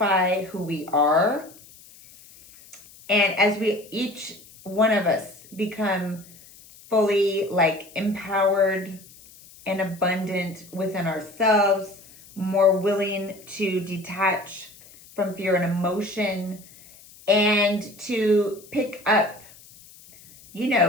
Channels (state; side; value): noise; left; hiss, 23 dB below the sound